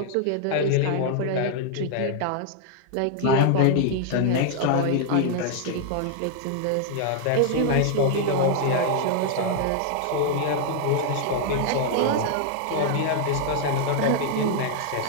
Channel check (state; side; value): different; both; correlation 0.00